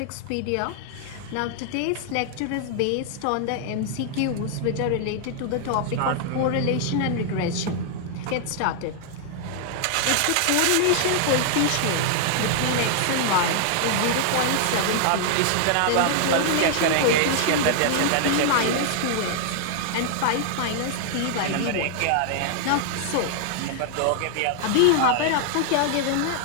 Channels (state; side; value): different; both; correlation 0.00